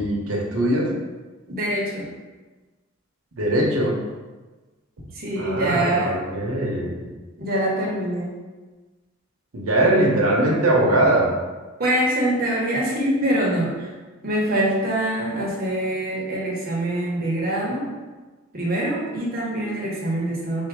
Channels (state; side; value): normal; both; correlation 0.23